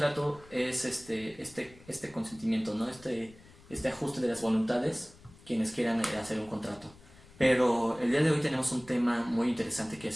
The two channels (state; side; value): noise; left; rumble, 23 dB below the sound